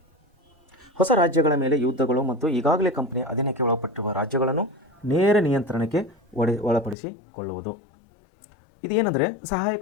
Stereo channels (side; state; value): right; drops out; at 7.0 s